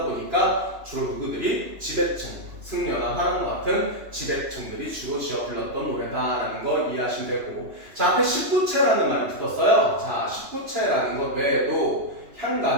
보니까 주로 누구들이 지배층, 승려나 화랑과 같은 지배층들이 주로 지어 불렀던 노래다라는 거 이해하시면 되고, 자, 앞에 19체라는 말이 붙었어요. 자, 19체라는 것 외에도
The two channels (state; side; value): late; left; 2.9 ms